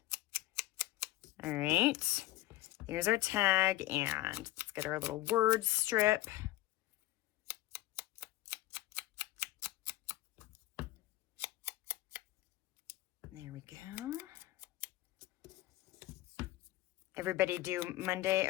All right. Here's our tag, and let's get our little word strip. There we go. Everybody do Monday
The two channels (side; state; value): right; quieter; 16.7 dB